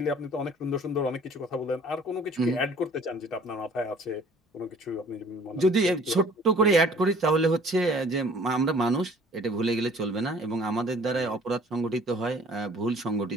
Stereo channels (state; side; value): normal; both; correlation 0.53